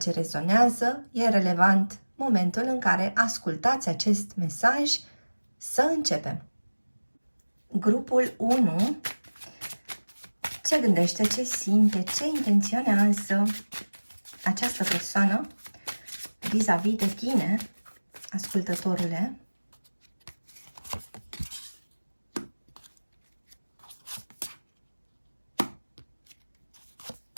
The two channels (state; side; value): inverted; both; correlation -1.00